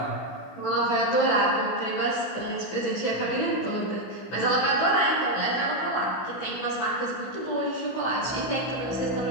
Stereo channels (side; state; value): right; late; 15 ms